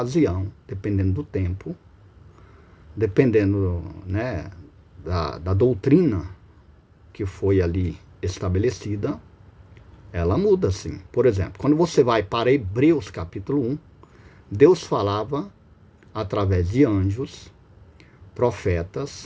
dependendo do tempo, dependendo, né, da doutrina que foi ali estabelecida, ela muda sim. Por exemplo, quando você vai para Hebreus capítulo 1, Deus falava através de anjos,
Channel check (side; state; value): both; identical; correlation 1.00